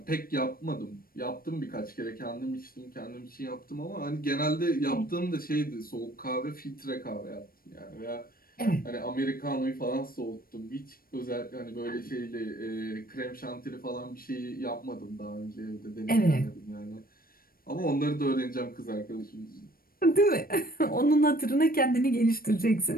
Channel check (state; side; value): late; right; 0.43 ms